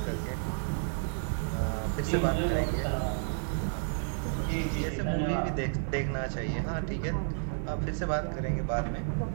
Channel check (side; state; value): left; silent; digital silence